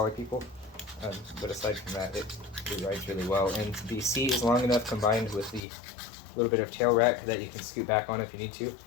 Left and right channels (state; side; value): drops out; right; at 5.6 s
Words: people, but aside from that, it rides really well. And the seat is long enough, combined with the little bit of tail rack, that you can scoot back on if you need to,